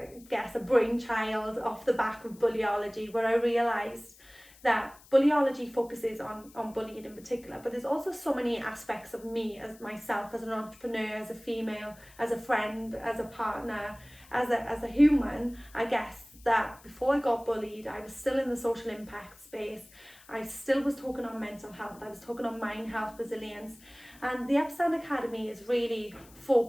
guess a brainchild off the back of bullyology, where I realised that Bullyology focuses on bullying in particular, but there's also so many aspects of me as myself, as an entrepreneur, as a female, as a friend, as a partner, as a human, I guess, that before I got bullied, I was still in the social impact space. I still was talking on mental health, I was talking on mind health, resilience, and the Upstand Academy is really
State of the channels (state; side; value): noise; left; hiss, 24 dB below the sound